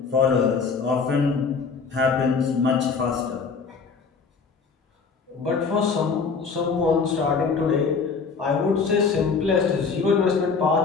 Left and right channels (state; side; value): quieter; right; 5.2 dB